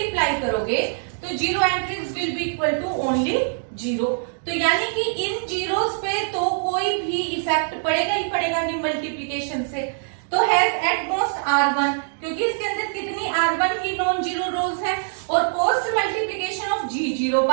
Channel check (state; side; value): silent; left; digital silence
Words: करोगे तो zero entries will be equal to only zero. तो यानी कि इन जीरोस पे तो कोई भी इफेक्ट पड़ेगा ही पड़ेगा नहीं मल्टीप्लिकेशन से। तो हैज एट मोस्ट R1, क्योंकि इसके अंदर कितनी R1 की नॉन जीरो रोज है, और post multiplication of G0